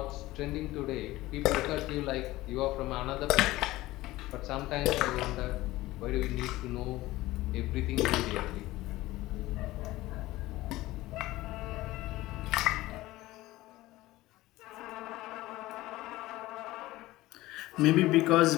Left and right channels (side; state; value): right; quieter; 17.8 dB